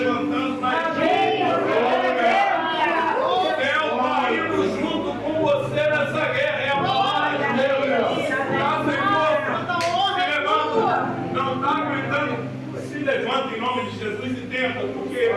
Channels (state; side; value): identical; both; correlation 1.00